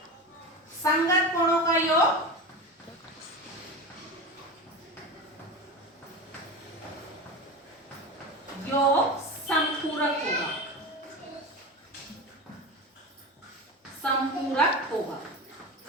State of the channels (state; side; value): normal; both; correlation 0.26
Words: संगत कोणों का योग संपूरक होगा। संपूरक होगा,